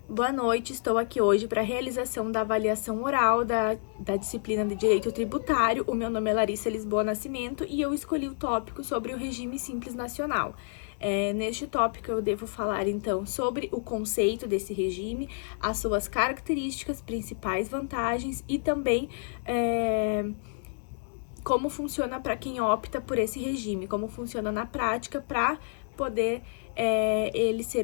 Boa noite, estou aqui hoje para a realização da avaliação oral da disciplina de Direito Tributário. O meu nome é Larissa Lisboa Nascimento e eu escolhi o tópico sobre o regime simples nacional. Neste tópico eu devo falar então sobre o conceito desse regime, as suas características, principais vantagens e também como funciona para quem opta por esse regime, como funciona na prática para poder ele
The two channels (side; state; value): right; silent; digital silence